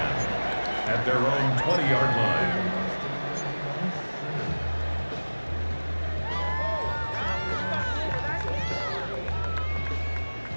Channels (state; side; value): inverted; both; correlation -1.00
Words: at their own 20-yard line.